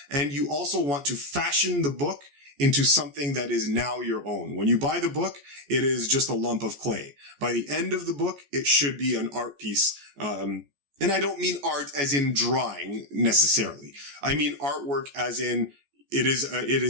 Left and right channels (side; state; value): left; late; 14 ms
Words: and you also want to fashion the book into something that is now your own. When you buy the book, it is just a lump of clay. By the end of the book, it should be an art piece. And I don't mean art as in drawing necessarily. I mean artwork as in it